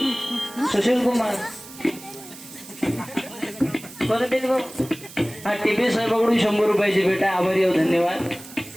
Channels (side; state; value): right; noise; hiss, 17 dB below the sound